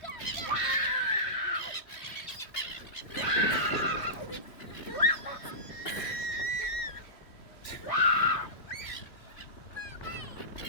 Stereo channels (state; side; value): late; right; 3.2 ms